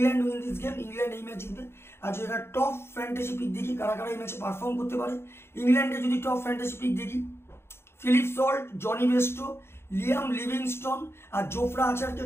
win this game, England এই ম্যাচ জিতবে। আর যদি একটা টপ ফ্যান্টাসি পিক দেখি কারা কারা এই ম্যাচে পারফর্ম করতে পারে, ইংল্যান্ডে যদি টপ ফ্যান্টাসি পিক দেখি, Philip Salt, Jonny Bairstow, Liam Livingstone আর জোফরা আচারকে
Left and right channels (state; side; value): late; right; 0.12 ms